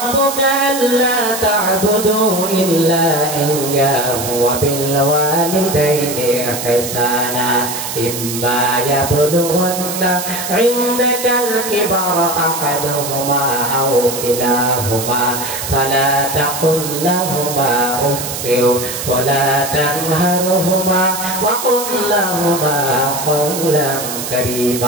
أَلَّا تَعْبُدُوا إِلَّا إِيَّاهُ وَبِالْوَالِدَيْنِ إِحْسَانًا إِمَّا يَبْلُغَنَّ عِندَكَ الْكِبَرَ أَحَدُهُمَا أَوْ كِلَاهُمَا فَلَا تَقُل لَّهُمَا أُفٍّ وَلَا تَنْهَرْهُمَا وَقُل لَّهُمَا قَوْلًا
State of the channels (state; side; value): noise; right; hiss, 6 dB below the sound